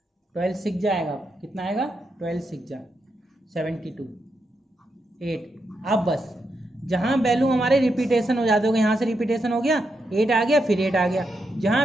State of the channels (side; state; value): both; normal; correlation 0.83